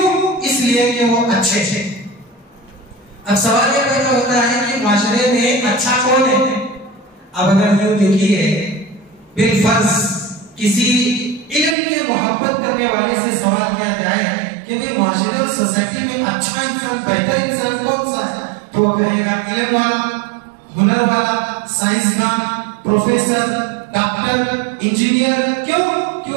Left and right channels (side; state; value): left; drops out; at 11.8 s